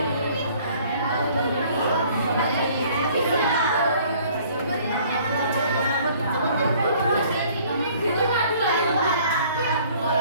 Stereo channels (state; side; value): inverted; both; correlation -0.56